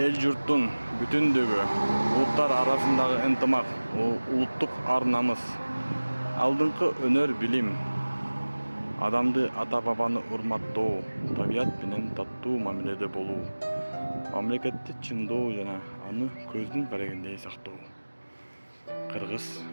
журттун бүтүндүгү, улуттар арасындагы ынтымак, улуттук ар намыс, алдыңкы өнөр билим, адамды ата бабаны урматтоо, табият менен таттуу мамиледе болуу, мамлекетти чындоо жана аны көздүн карегиндей сактоо. Кыргыз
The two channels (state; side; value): inverted; both; correlation -1.00